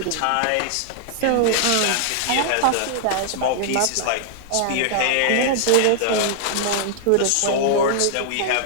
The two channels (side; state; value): both; different; correlation -0.01